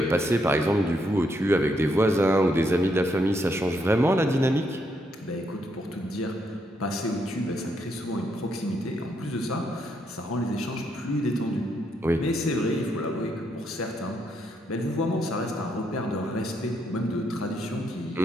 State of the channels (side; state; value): both; normal; correlation 0.76